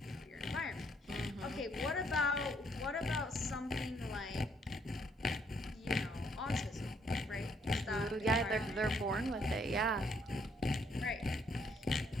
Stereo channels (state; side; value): normal; both; correlation 0.69